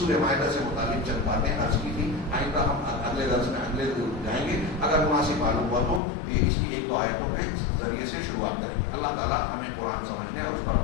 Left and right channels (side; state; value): right; drops out; at 6.0 s